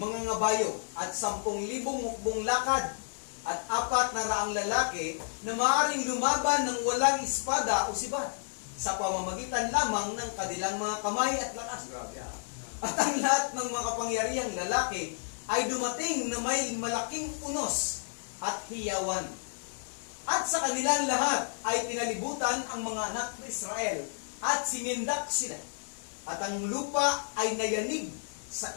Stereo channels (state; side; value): silent; right; digital silence